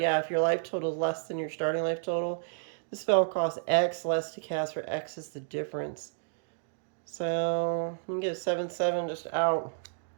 if your life total is less than your starting life total, the spell costs X less to cast, for X is the difference. So, we can get a 7/7 just out.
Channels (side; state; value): left; silent; digital silence